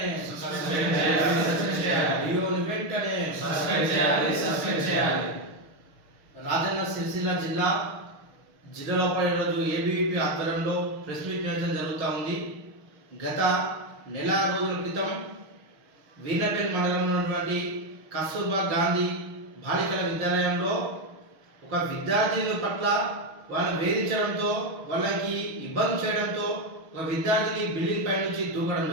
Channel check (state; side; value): late; left; 6.4 ms